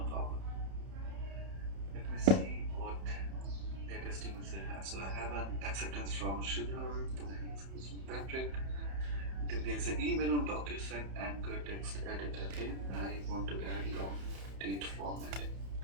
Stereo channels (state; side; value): late; left; 31 ms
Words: problem. Let me see what latest emails I have. So I have an acceptance from Shidhar, then I have acceptance from Patrick. Then there's an email on DocuSign anchor text edit. Okay, I want to add long date format.